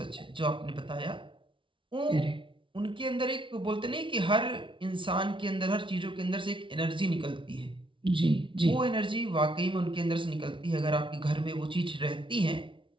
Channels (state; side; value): late; left; 0.25 ms